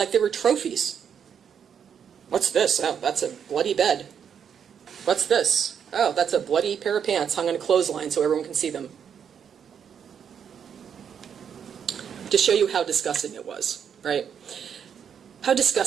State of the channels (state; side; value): quieter; left; 7.8 dB